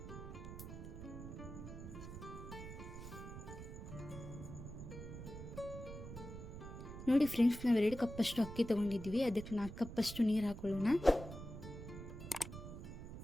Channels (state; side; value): noise; right; rumble, 10 dB below the sound